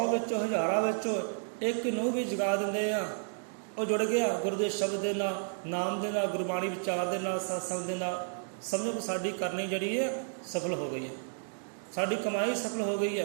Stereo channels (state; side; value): silent; left; digital silence